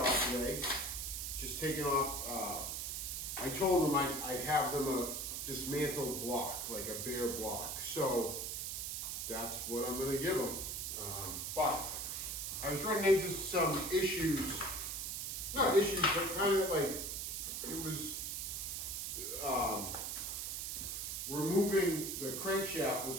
today. Just taking off, I told them I'd have them a dismantled block, like a bare block. So that's what I'm gonna give them. But I was running into some issues, not issues, but kind of like, it was, removing the crankshaft was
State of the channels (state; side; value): noise; right; hiss, 3 dB below the sound